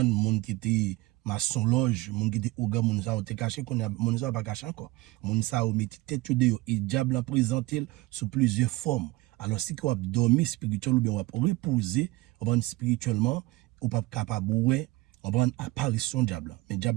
monde qui était maçon loge, monde qui était oga, monde ça a été caché qu'on a monde ça pas caché encore. Monde ça a mis tête de et diable a présenté sous plusieurs formes. Alors si qu'on a dormi spirituel ou bien on a reposer, on va spirituellement, on pas capable ouais, on prend apparition diable. Mais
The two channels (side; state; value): left; quieter; 20.2 dB